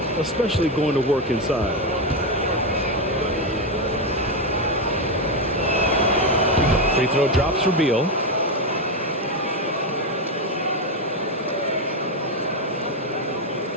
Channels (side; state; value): both; normal; correlation 0.08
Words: especially going to work inside. Free throw drops for Beal.